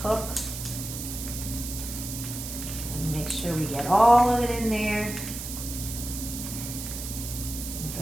cook. And make sure we get all of it in there.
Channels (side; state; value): right; noise; hiss, 7 dB below the sound